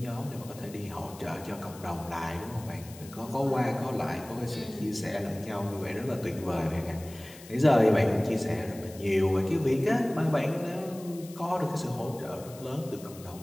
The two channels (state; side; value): noise; left; hiss, 19 dB below the sound